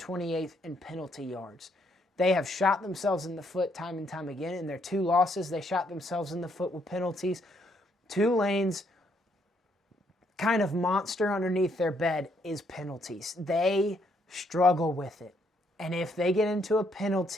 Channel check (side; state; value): both; normal; correlation 0.72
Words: in penalty yards. They have shot themselves in the foot time and time again. In their 2 losses, they shot themselves in the foot with penalties. Tulane's kind of monster underneath their bed is penalties. They struggle with it. And if they get into a